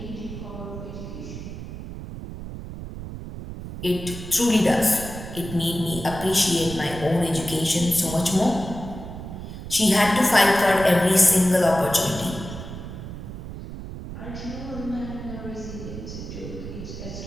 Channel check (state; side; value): noise; right; rumble, 10 dB below the sound